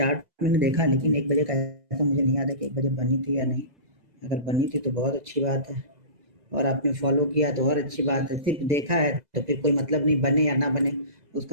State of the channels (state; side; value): late; left; 2.0 ms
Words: मैंने देखा लेकिन 1 बजे का ऐसा मुझे नहीं याद है कि 1 बजे बनी थी या नहीं। अगर बनी थी तो बहुत अच्छी बात है और आपने फॉलो किया तो और अच्छी बात है। सिर्फ देखा है तो फिर कोई मतलब नहीं, बने या ना बने